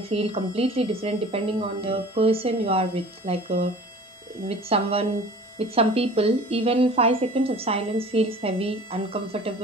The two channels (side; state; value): both; normal; correlation 0.43